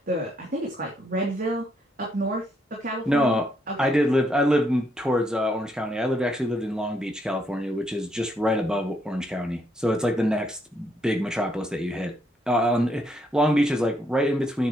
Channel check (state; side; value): normal; both; correlation 0.74